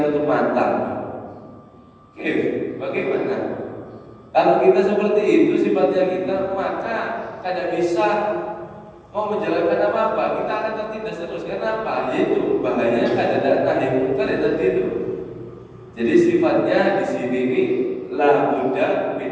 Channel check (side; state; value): both; identical; correlation 1.00